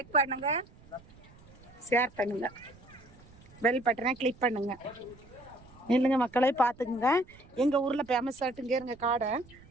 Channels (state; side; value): noise; right; rumble, 23 dB below the sound